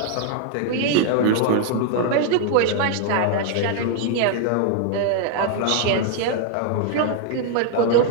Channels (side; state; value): both; different; correlation 0.00